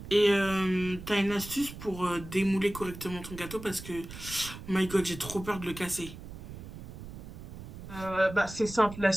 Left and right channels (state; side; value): noise; right; rumble, 12 dB below the sound